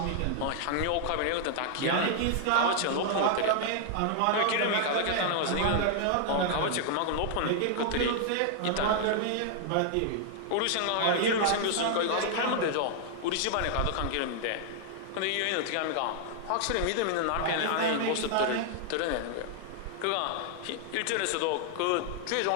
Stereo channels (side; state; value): both; different; correlation 0.00